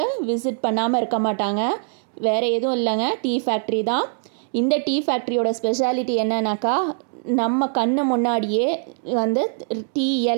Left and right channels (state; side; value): silent; left; 60 dB below the other